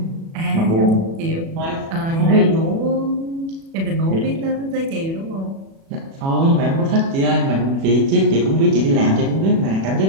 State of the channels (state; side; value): late; left; 36 ms